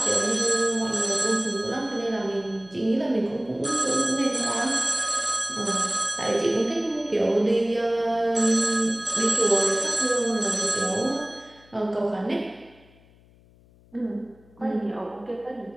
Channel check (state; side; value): noise; left; hum, 28 dB below the sound